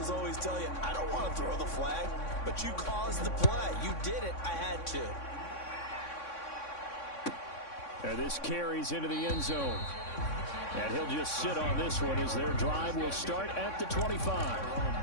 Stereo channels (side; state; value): right; late; 3.6 ms